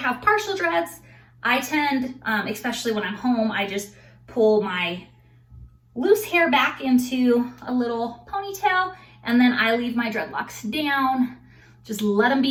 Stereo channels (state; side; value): identical; both; correlation 1.00